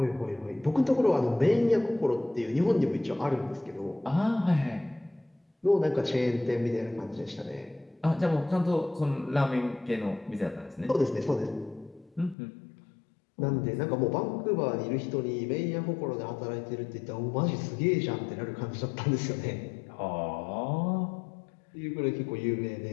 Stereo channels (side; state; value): right; drops out; at 12.4 s